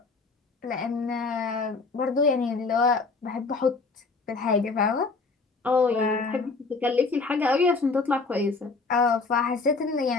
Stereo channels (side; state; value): right; quieter; 4.1 dB